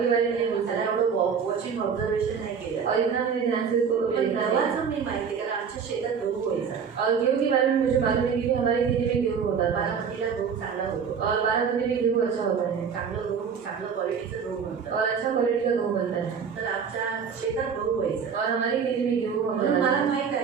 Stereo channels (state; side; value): quieter; left; 6.5 dB